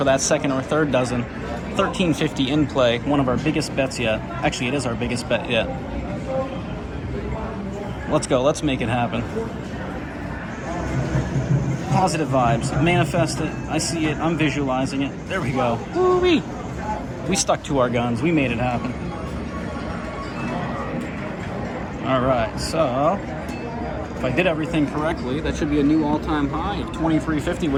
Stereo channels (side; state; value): both; identical; correlation 1.00